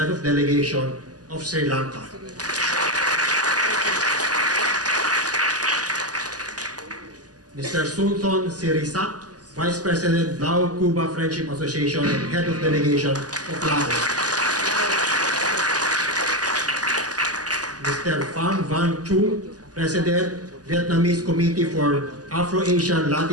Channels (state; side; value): late; left; 0.68 ms